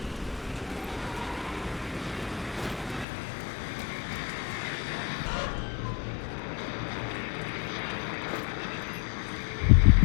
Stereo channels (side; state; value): right; drops out; at 3.1 s